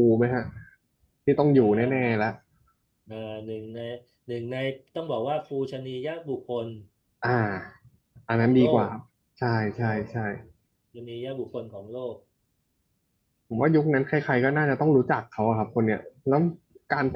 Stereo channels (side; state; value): both; identical; correlation 1.00